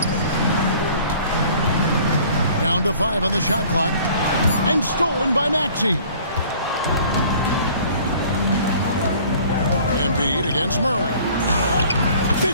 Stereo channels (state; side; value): inverted; both; correlation -0.51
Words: Down to 5 on the shot clock. And stolen by Maxey. Embiid against Murray.